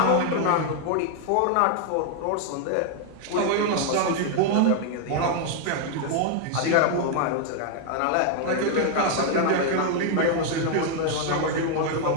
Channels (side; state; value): both; different; correlation 0.00